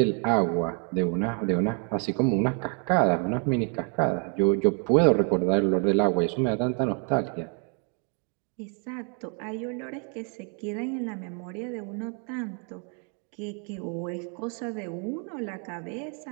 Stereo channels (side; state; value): left; quieter; 39.7 dB